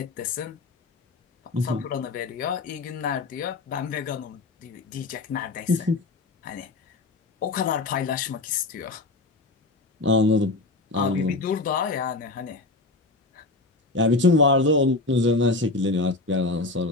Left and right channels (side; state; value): right; quieter; 3.2 dB